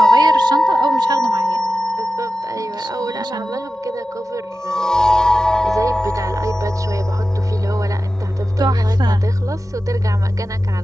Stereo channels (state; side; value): normal; both; correlation 0.94